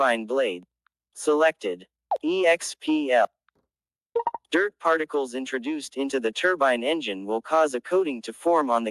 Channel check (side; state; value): both; identical; correlation 1.00